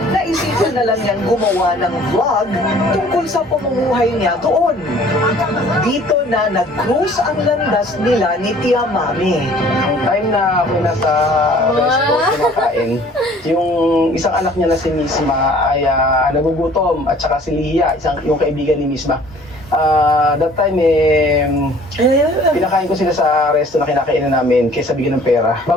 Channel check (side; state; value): both; normal; correlation 0.53